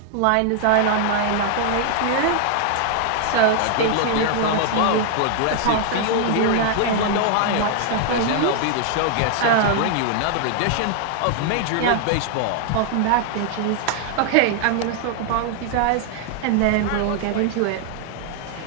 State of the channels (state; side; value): different; both; correlation 0.00